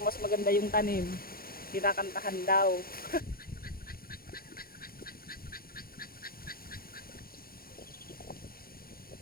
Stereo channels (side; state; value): right; late; 0.43 ms